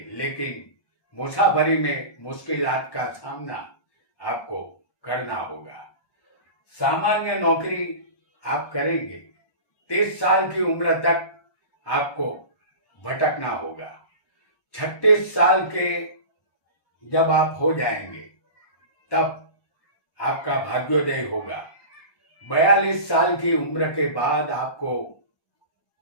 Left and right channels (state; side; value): late; right; 1.2 ms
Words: लेकिन मुसाफरी में मुश्किलात का सामना आपको करना होगा। सामान्य नौकरी आप करेंगे। 30 साल की उम्र तक आपको भटकना होगा। 36 साल के जब आप हो जाएंगे तब आपका भाग्योदय होगा। 42 साल की उम्र के बाद आपको